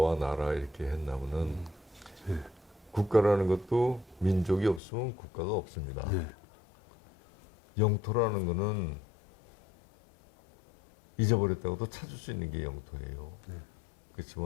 나라 이렇게 했나면은 국가라는 것도 민족이 없으면 국가가 없습니다. 네. 영토라는 거는 잊어버렸다고도 찾을 수 있는 게 영토예요.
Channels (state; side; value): drops out; right; at 4.8 s